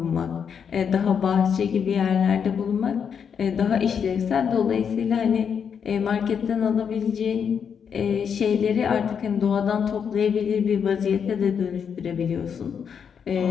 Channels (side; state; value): right; quieter; 7.2 dB